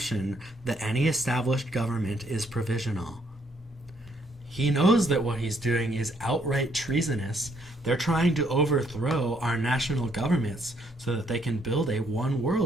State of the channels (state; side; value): normal; both; correlation 0.70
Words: that any established government is provisional. He knows that what he's doing is outright treasonous. They're trying to overthrow our national governments so that they can build a